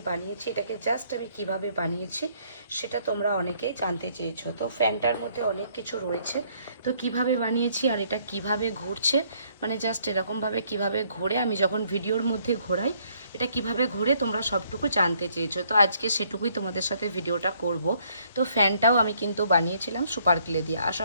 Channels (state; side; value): inverted; both; correlation -0.66